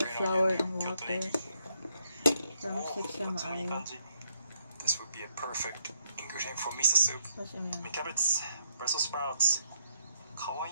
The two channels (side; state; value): both; inverted; correlation -0.74